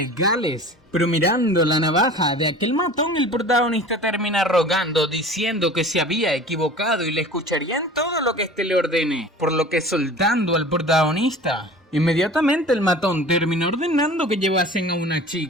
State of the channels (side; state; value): both; normal; correlation 0.41